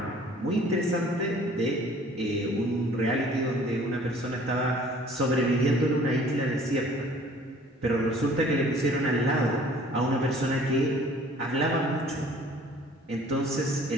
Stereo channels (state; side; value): normal; both; correlation 0.53